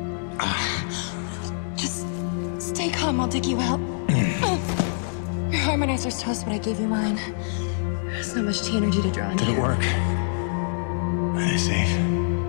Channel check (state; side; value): silent; right; digital silence